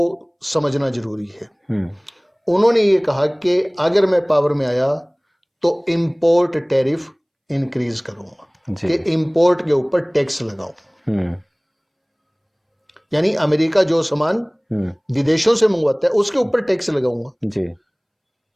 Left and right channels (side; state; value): both; identical; correlation 1.00